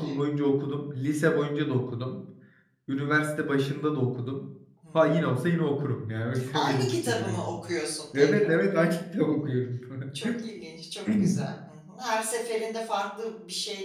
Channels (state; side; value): identical; both; correlation 1.00